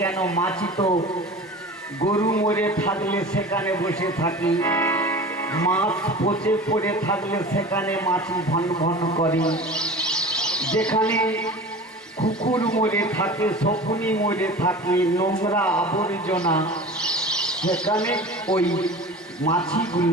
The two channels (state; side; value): normal; both; correlation 0.37